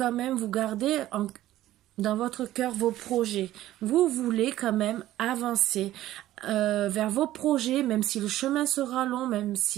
même, vous gardez dans votre cœur vos projets. Vous voulez quand même avancer vers vos projets, même si le chemin sera long, même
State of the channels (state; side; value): quieter; left; 14.4 dB